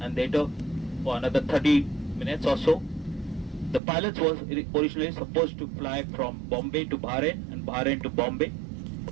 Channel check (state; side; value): drops out; left; at 3.8 s